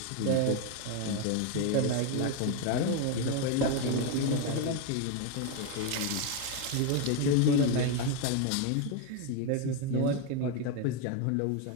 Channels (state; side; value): different; both; correlation 0.01